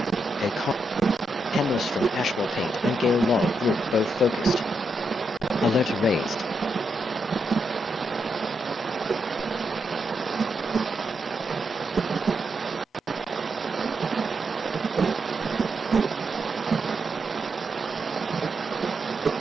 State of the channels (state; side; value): normal; both; correlation 0.83